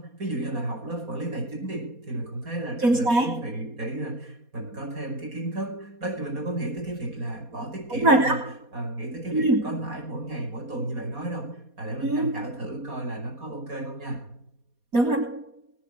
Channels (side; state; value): left; late; 4.2 ms